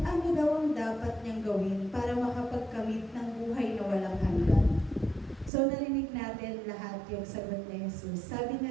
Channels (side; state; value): left; drops out; at 5.5 s